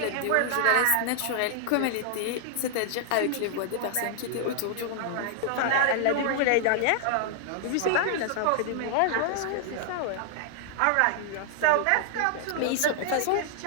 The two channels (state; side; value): different; both; correlation -0.01